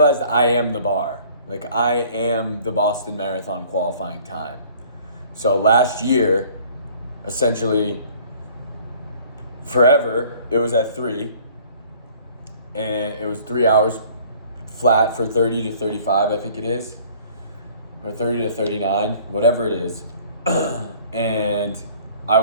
I am the bar. Like, I am the Boston Marathon qualifying time. So last year, essentially forever, it was at 3, and it was 3 hours flat for 30 to 35, I think it is, or 30 to 39, whatever it is. And I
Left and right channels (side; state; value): both; inverted; correlation -0.53